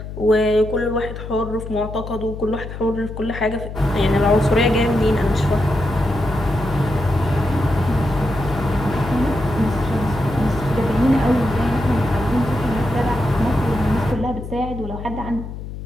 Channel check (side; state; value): left; noise; hum, 9 dB below the sound